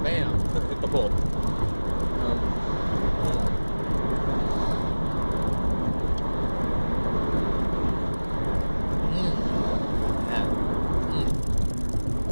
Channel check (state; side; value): inverted; both; correlation -1.00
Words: hit the pole.